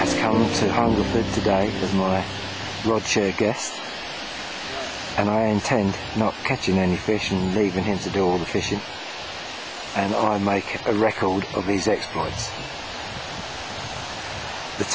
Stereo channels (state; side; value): identical; both; correlation 1.00